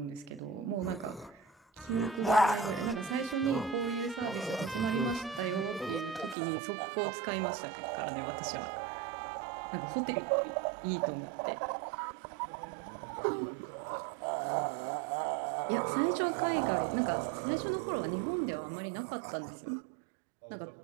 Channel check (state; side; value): drops out; left; at 6.4 s